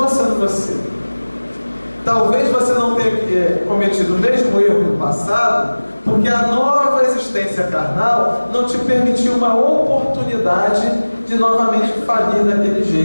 sendo você. Talvez você não tenha cometido o mesmo erro no passado, porque a nova existência carnal não te permitiu uma oportunidade de novamente falir daquele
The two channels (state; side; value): inverted; both; correlation -1.00